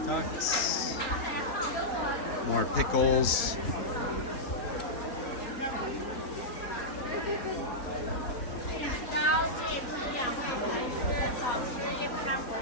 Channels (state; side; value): late; right; 3.9 ms